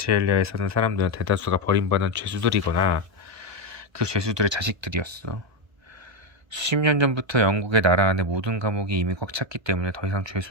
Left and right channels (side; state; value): left; late; 1.3 ms